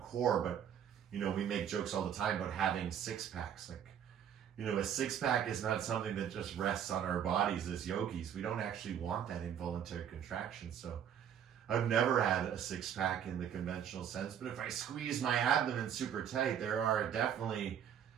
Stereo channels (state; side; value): quieter; left; 9.0 dB